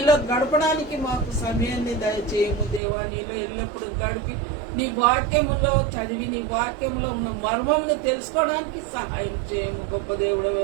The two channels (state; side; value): drops out; left; at 2.8 s